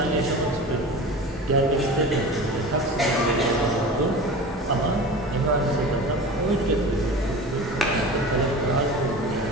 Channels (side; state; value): both; normal; correlation 0.34